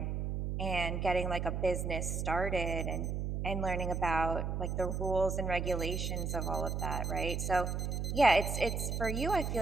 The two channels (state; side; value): noise; right; hum, 1 dB below the sound